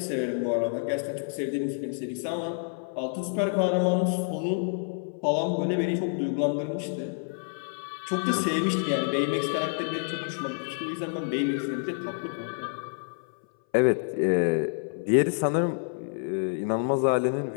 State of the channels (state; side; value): silent; right; 58 dB below the other